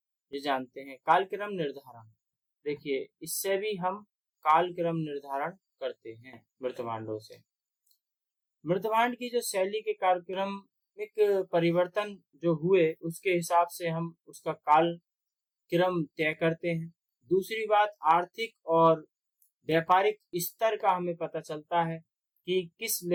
ये जानते हैं। कालक्रम निर्धारण, देखिए इससे भी हम कालक्रम निर्धारण करते हैं मृतभांडों से। मृतभांड की जो शैली के कालक्रमिक परिवर्तन जो हुए, उसके हिसाब से हम उसका कालक्रम तय करते हैं। दूसरी बात, आर्थिक और व्यापारिक स्तर का हमें पता चलता है कि किस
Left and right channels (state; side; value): identical; both; correlation 1.00